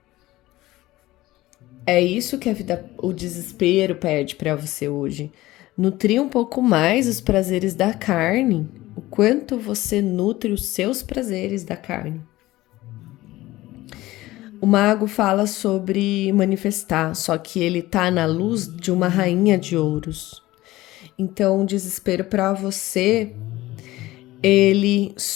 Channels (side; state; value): right; quieter; 17.5 dB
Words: É isso que a vida, o desespero pede para você hoje. Nutrir um pouco mais os prazeres da carne. O quanto você nutre os seus prazeres da carne. O mago fala sobre manifestar, só que ele tá na luz de uma rainha de ouros. Então, o desespero para você, ele